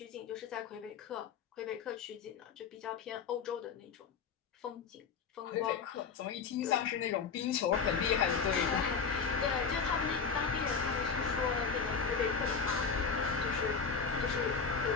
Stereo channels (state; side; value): quieter; right; 5.8 dB